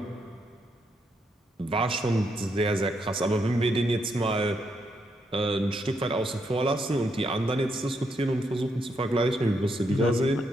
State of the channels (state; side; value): normal; both; correlation 0.78